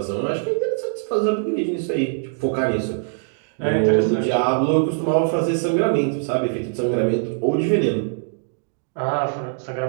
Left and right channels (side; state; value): left; silent; digital silence